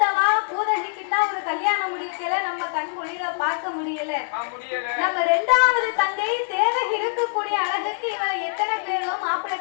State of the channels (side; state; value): right; silent; digital silence